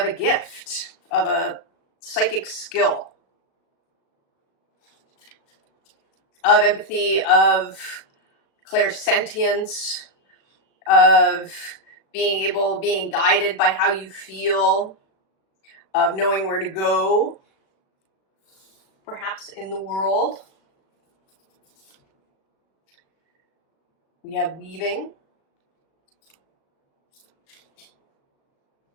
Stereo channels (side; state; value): right; late; 37 ms